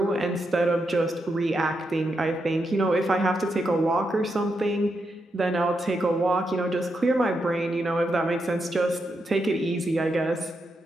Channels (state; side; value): normal; both; correlation 0.83